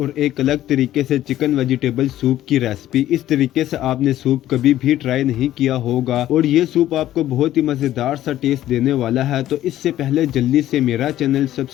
एक अलग तरीके से चिकन वेजिटेबल सूप की रेसिपी। इस तरीके से आपने सूप कभी भी ट्राई नहीं किया होगा और ये सूप आपको बहुत ही मज़ेदार सा टेस्ट देने वाला है। तो इससे पहले जल्दी से मेरा चैनल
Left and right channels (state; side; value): quieter; right; 13.2 dB